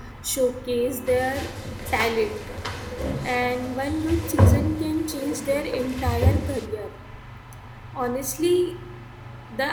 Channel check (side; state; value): both; identical; correlation 1.00